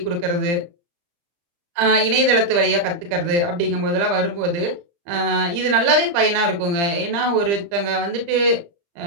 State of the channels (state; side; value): late; left; 35 ms